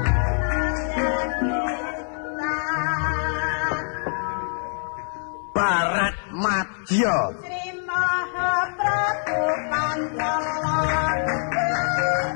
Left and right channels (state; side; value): silent; right; 59 dB below the other